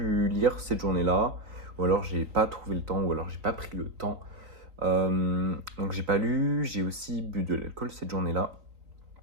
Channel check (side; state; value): left; late; 3.9 ms